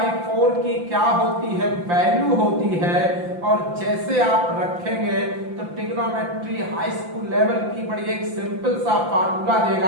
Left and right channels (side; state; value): left; late; 5.8 ms